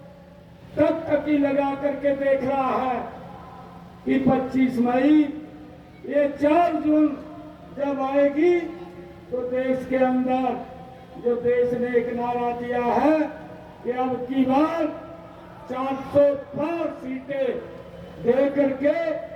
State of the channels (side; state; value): both; identical; correlation 1.00